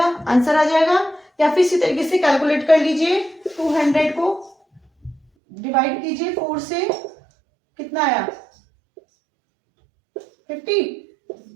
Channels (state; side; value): drops out; left; at 5.2 s